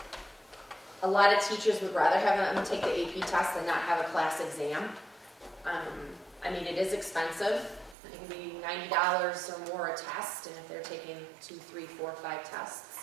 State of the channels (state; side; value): drops out; left; at 8.0 s